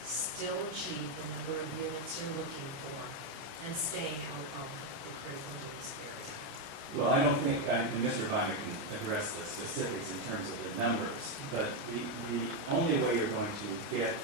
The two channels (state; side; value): late; left; 29 ms